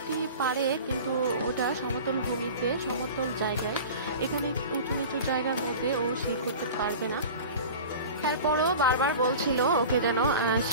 পারে, কিন্তু ওটা সমতল ভূমিতে, সমতল জায়গায়, এখানে উঁচু নিচু জায়গার মধ্যে ও শি করতে পারবে না। তারপরও বারবার বলছিল ওকে যেন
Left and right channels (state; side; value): inverted; both; correlation -0.36